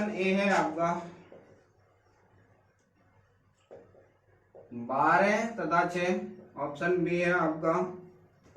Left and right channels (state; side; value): identical; both; correlation 1.00